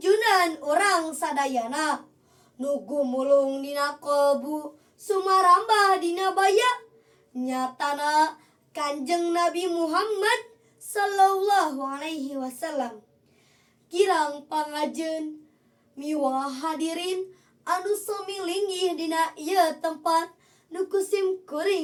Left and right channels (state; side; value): identical; both; correlation 1.00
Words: urang sadayana nu gumulung dina kolbu sumarambah dina baya nyatana Kanjeng Nabi Muhammad sallallahu alaihi wasallam. Kirang pangajeun miwah hadirin anu sami linggih dina ieu tempat nu kusim